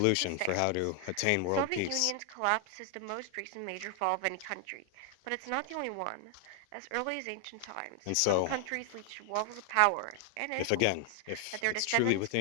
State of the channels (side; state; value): both; different; correlation 0.00